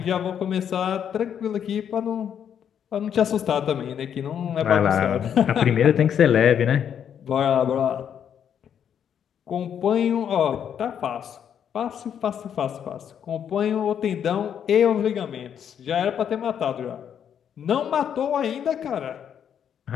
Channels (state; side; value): quieter; right; 8.6 dB